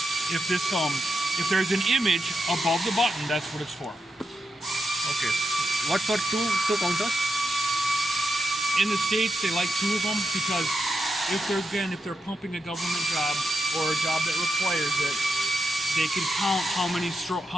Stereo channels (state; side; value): normal; both; correlation 0.85